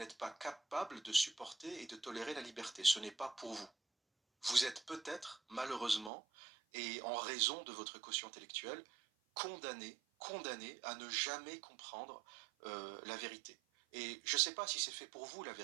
pas capable de supporter et de tolérer la liberté. Ce n'est pas pour vous. Vous êtes peut-être, malheureusement, et en raison de votre quotient intellectuel, condamné à ne jamais comprendre la vérité. Et je ne sais pas si c'est fait pour vous, la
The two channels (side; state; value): left; drops out; at 6.1 s